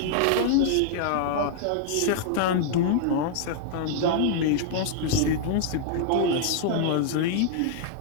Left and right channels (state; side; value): different; both; correlation -0.01